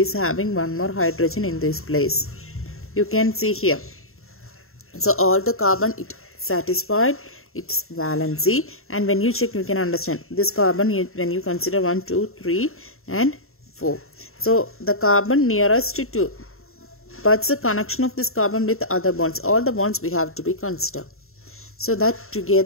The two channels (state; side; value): late; right; 0.62 ms